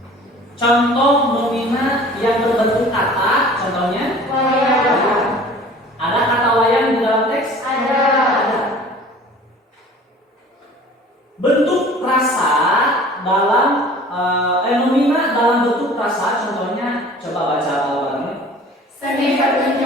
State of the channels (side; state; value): both; normal; correlation 0.46